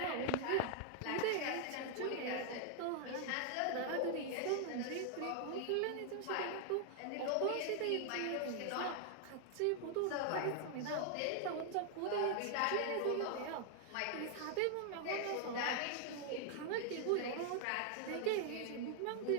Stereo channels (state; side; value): different; both; correlation 0.00